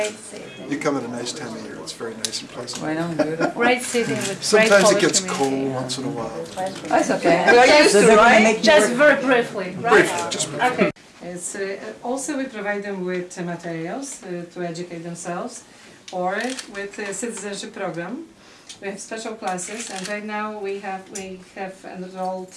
city. You come at a nice time of year. It's very nice and pleasant. I know, beautiful. Great city with great Sometimes it Polish gets community. cold once in a while. That's okay. We are used to, right? Just very briefly, right? Briefly, just briefly. Okay. It's, also we provide them with materials to educate themselves, or with a citizenship program. We have special classes, and right now we have enrolled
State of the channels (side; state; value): both; identical; correlation 1.00